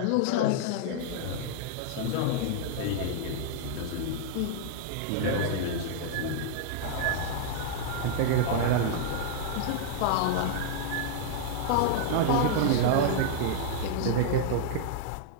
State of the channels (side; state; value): both; different; correlation -0.01